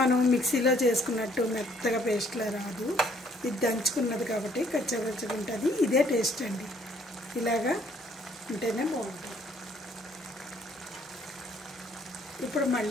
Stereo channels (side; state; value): both; normal; correlation 0.63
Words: మనం మిక్సీలో చేసుకున్నట్టు మెత్తగా పేస్ట్లా రాదు. ఇది దంచుకున్నది కాబట్టి కచ్చపచ్చగా ఉంటుంది. ఇదే టేస్ట్ అండి, ఇలాగా ఉంటేనే బాగుంటుంది. ఇప్పుడు